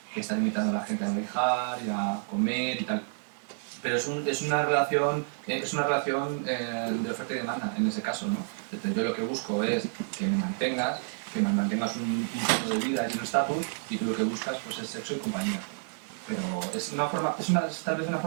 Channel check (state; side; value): silent; left; 58 dB below the other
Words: que estar invitando a la gente a viajar y a comer y tal. Pero es una relación de oferta y demanda en ese caso, ¿no? Entonces, yo lo que busco es que me mantengas un estilo de vida y un estatus, y tú lo que buscas pues es sexo y compañía. Pero es tal vez una